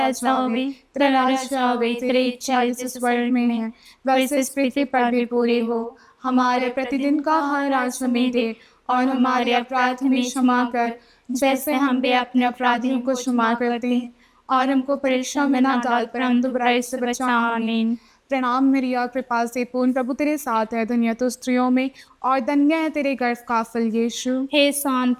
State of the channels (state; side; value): identical; both; correlation 1.00